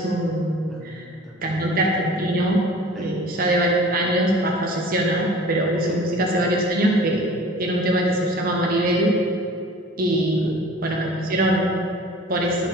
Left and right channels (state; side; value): normal; both; correlation 0.44